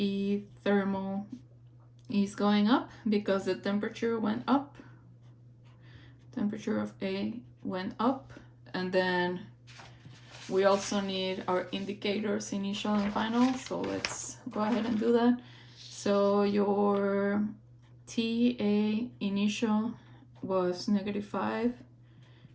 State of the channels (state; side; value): identical; both; correlation 1.00